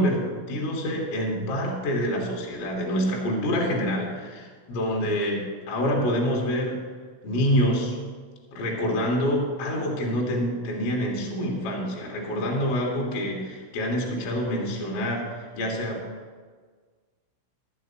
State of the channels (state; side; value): late; right; 16 ms